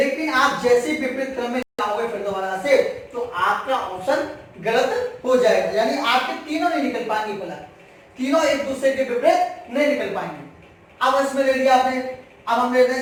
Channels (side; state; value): both; identical; correlation 1.00